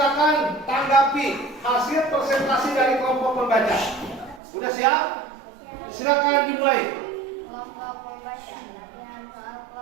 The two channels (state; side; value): drops out; left; at 4.4 s